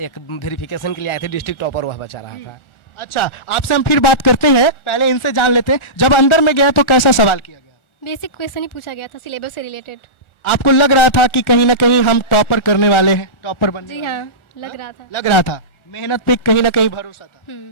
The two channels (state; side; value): late; right; 1.4 ms